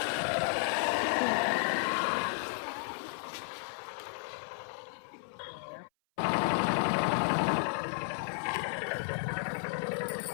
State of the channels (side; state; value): right; silent; 56 dB below the other